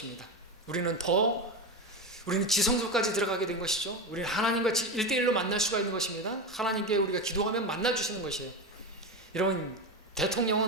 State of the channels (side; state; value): both; normal; correlation 0.18